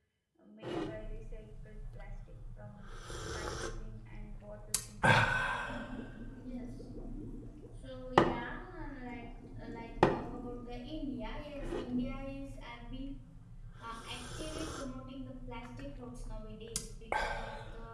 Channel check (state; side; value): identical; both; correlation 1.00